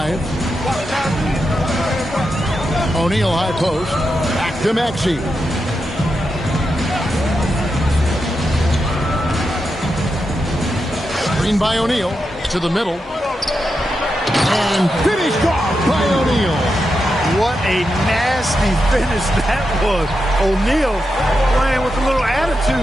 O'Neal high post. Back to Maxey. Screen by O'Neal to the middle. And finished off by O'Neal. What a nasty finish that was. O'Neal playing with a little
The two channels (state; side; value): normal; both; correlation 0.87